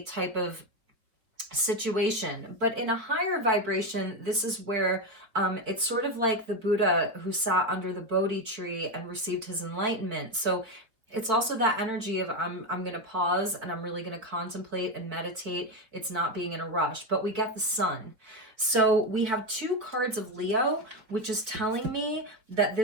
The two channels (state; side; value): late; left; 4.8 ms